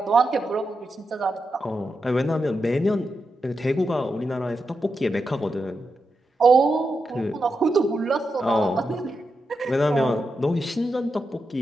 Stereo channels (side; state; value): both; normal; correlation 0.87